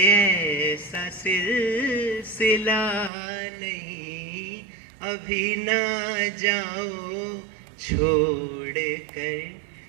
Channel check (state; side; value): drops out; left; at 3.1 s